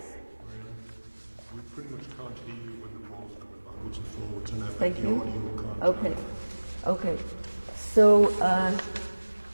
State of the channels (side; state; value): both; inverted; correlation -1.00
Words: We pretty much can't hear you when the ball's going backwards and forwards, and Thank the you. audio can't. Okay. So